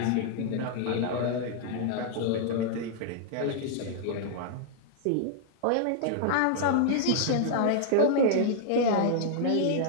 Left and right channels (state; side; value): different; both; correlation -0.01